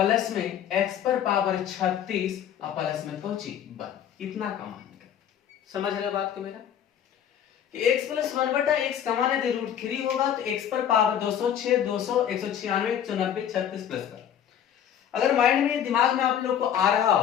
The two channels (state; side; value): quieter; right; 9.5 dB